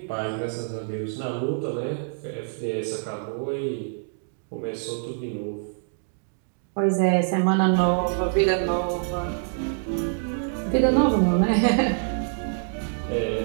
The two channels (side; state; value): left; silent; digital silence